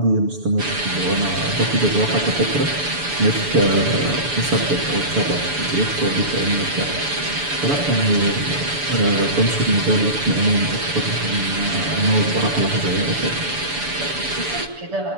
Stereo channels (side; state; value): left; late; 6.9 ms